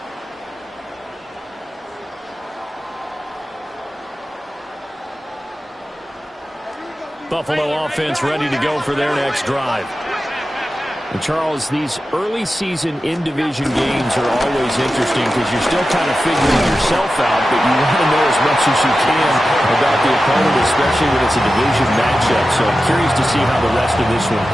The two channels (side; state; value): both; normal; correlation 0.93